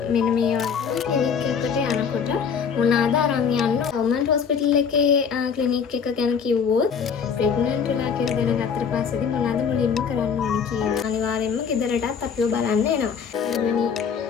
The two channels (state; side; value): quieter; right; 6.6 dB